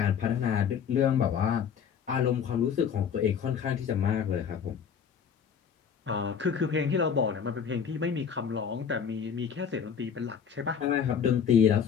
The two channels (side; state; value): right; quieter; 7.4 dB